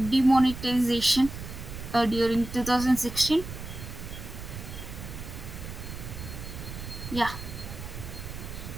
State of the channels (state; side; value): noise; right; rumble, 10 dB below the sound